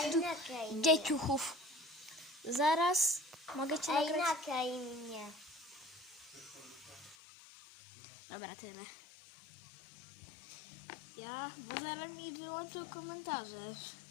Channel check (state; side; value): drops out; right; at 7.2 s